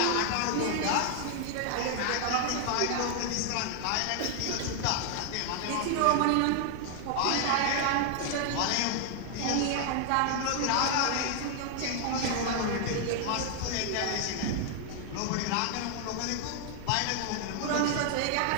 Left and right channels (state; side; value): different; both; correlation 0.00